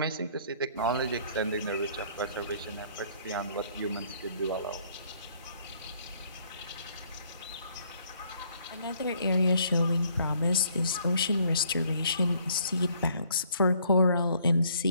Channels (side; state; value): both; inverted; correlation -0.64